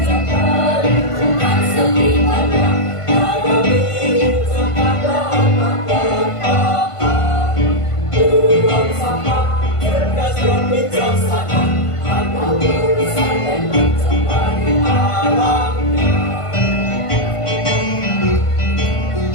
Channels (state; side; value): late; right; 1.5 ms